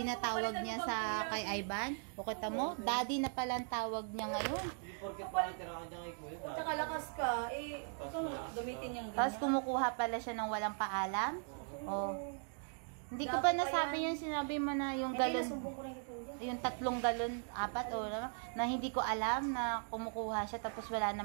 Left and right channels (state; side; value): silent; left; 52 dB below the other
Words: na tawag niya sa kay Ivan. O kita mo, daddy na pala ang tawag niya ngayon. Tsaka lakas ka, gamitin niyang ganyan. Tapos kumukuha pala siya ng walang paalam. O, hindi ko pa nasabi yung sinabi mo na yung galon. Yung 3 galon, 4 o na hindi ko alam na kumukuha siya tapos wala